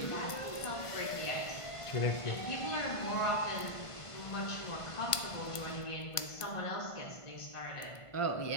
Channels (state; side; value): late; right; 1.5 ms